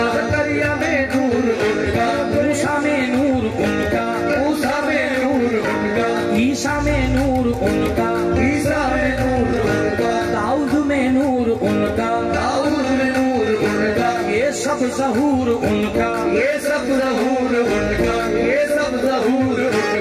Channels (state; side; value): identical; both; correlation 1.00